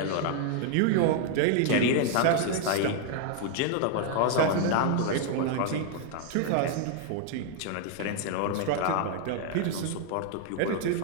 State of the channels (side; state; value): both; different; correlation 0.00